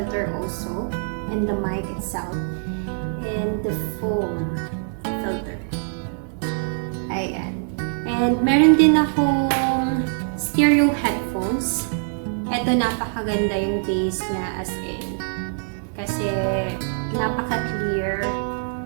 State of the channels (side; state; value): left; silent; 63 dB below the other